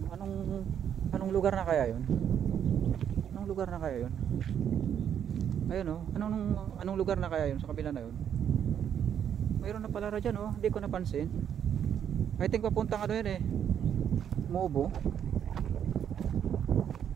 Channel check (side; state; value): left; quieter; 8.9 dB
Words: Anong lugar na kaya 'yun? Anong lugar na kaya 'yun? Ayun oh, anong lugar na kaya 'yun sa kabila na 'yun? Mayroon na pala diyan oh, hindi ko napansin. I think papuntang ano 'yan eh. Mobo.